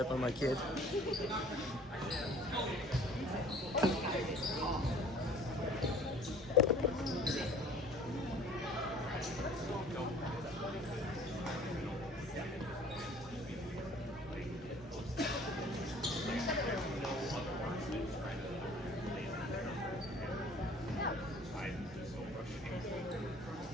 by my kid.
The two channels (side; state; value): both; normal; correlation 0.51